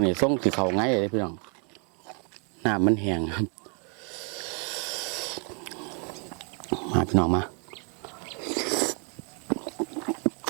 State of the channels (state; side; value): quieter; left; 38.8 dB